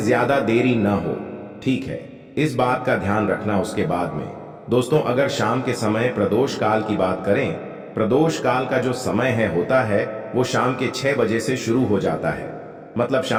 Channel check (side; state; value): both; identical; correlation 1.00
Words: देरी न हो, ठीक है? इस बात का ध्यान रखना। उसके बाद में दोस्तों, अगर शाम के समय प्रदोष काल की बात करें, प्रदोष काल का जो समय होता है वो शाम के 6 बजे से शुरू हो जाता है। मतलब